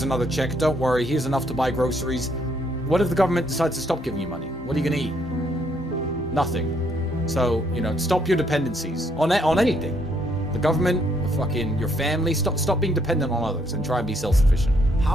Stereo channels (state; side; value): normal; both; correlation 0.70